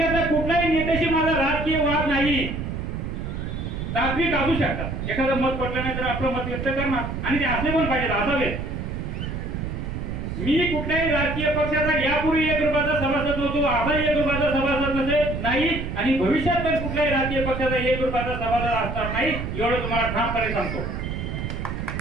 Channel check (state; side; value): noise; right; rumble, 5 dB below the sound